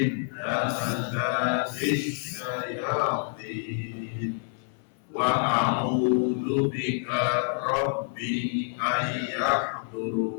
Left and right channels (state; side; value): silent; right; 57 dB below the other